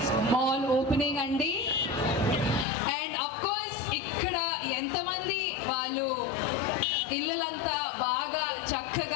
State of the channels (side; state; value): right; drops out; at 2.7 s